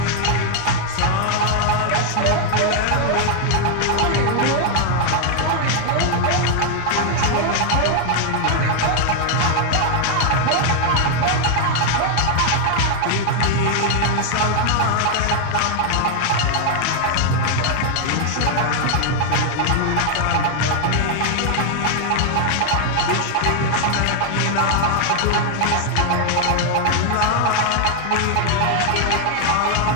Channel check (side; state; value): both; different; correlation 0.00